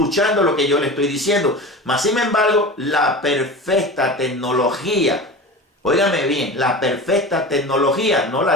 lo que yo le estoy diciendo. Mas, sin embargo, la perfecta tecnología, óigame bien, la perfecta tecnología no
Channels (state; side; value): normal; both; correlation 0.31